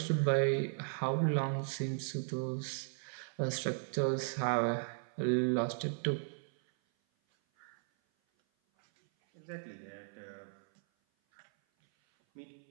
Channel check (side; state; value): left; silent; 54 dB below the other